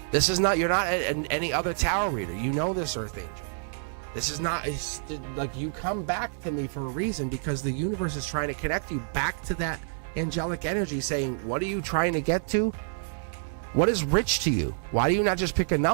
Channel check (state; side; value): silent; left; 59 dB below the other